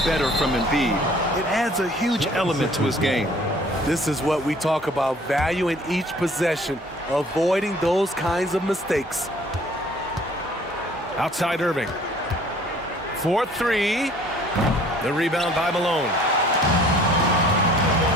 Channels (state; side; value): normal; both; correlation 0.54